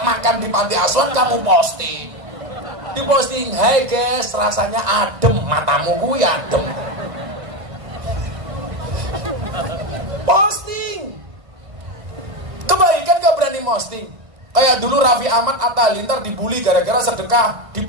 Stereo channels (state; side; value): late; left; 1.9 ms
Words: makan di panti asuhan kamu posting. Di posting, hai guys, rasanya adem, matamu gue adem. Posting. Kebaikan gak berani posting. Kayak dulu Raffi Ahmad Atta Halilintar dibully gara-gara sedekah, di